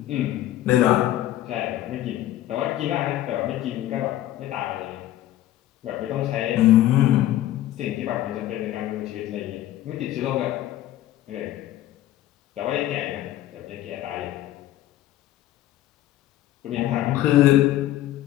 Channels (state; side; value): quieter; right; 13.7 dB